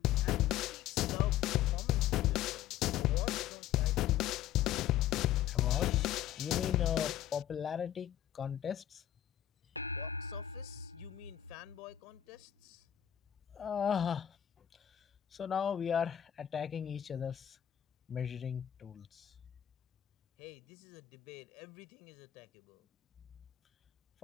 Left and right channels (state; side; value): quieter; right; 11.6 dB